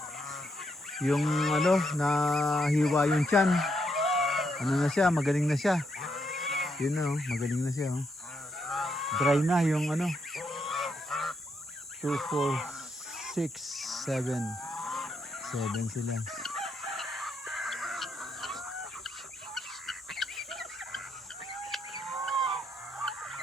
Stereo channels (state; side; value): normal; both; correlation 0.78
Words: nahiwa yung tiyan. Na siya, magaling na siya. Yun magaling na siya. Dry na yung 2, 4, 6, 7. 7 sila.